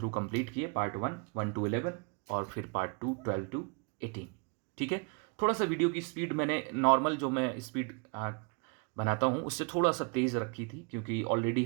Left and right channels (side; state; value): left; quieter; 35.4 dB